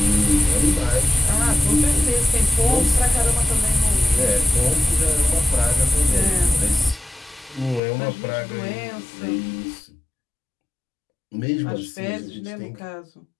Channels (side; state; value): right; drops out; at 7.8 s